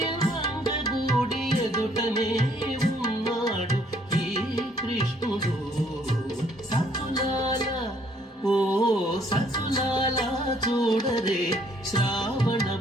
మంగగూడి ఎదుటనే ఉన్నాడు ఈ కృష్ణుడు సతులాల ఓ సతులాల చూడరే శ్రావణ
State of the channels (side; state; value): both; normal; correlation 0.64